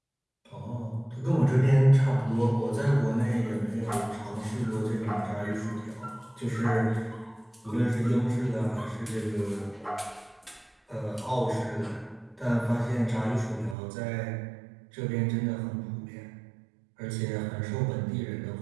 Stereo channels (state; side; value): drops out; left; at 13.8 s